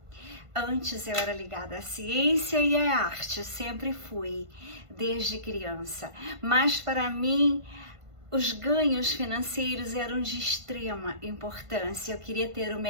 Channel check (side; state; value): left; late; 1.5 ms